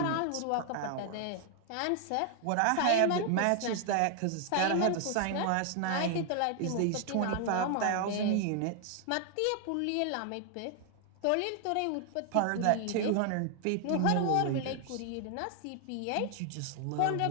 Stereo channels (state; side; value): different; both; correlation 0.00